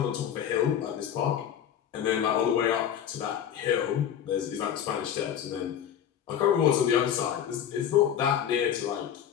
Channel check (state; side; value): quieter; right; 9.5 dB